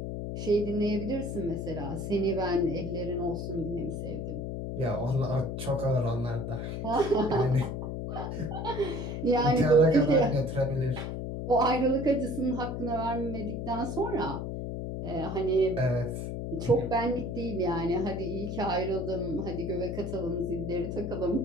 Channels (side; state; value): left; noise; hum, 4 dB below the sound